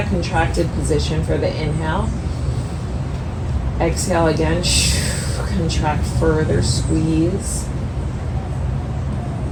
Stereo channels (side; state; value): both; identical; correlation 1.00